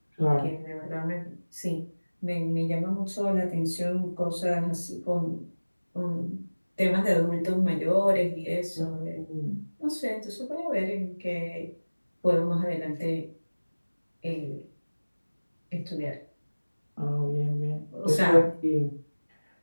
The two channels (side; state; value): both; inverted; correlation -1.00